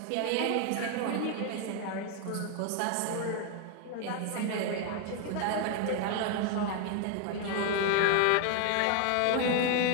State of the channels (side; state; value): both; different; correlation 0.01